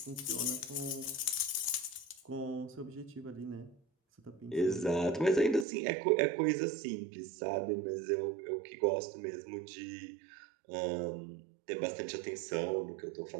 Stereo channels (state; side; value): drops out; left; at 5.7 s